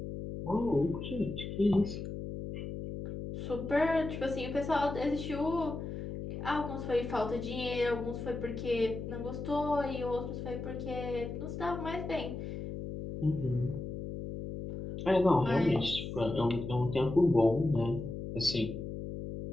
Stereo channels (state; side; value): noise; left; hum, 7 dB below the sound